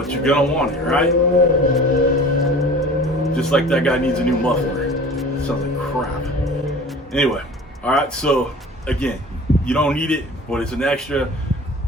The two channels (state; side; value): normal; both; correlation 0.42